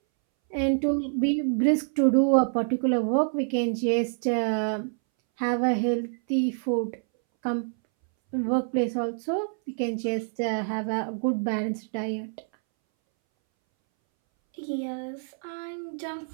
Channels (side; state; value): left; silent; 60 dB below the other